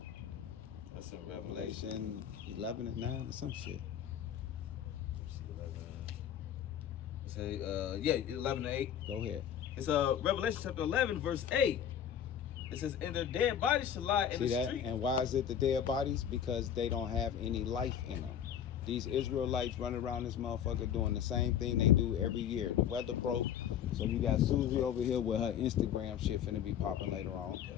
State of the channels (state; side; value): quieter; right; 9.2 dB